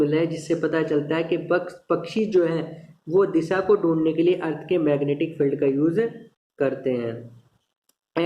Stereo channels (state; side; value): identical; both; correlation 1.00